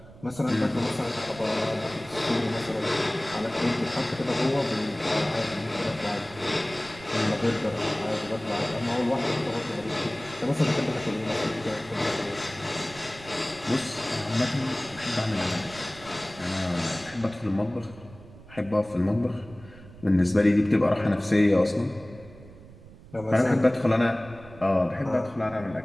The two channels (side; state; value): right; noise; rumble, 19 dB below the sound